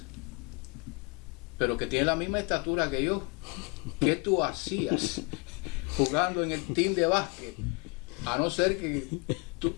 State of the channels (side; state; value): right; quieter; 32.5 dB